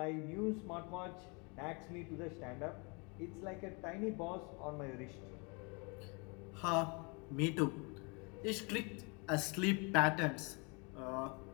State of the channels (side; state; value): right; quieter; 31.7 dB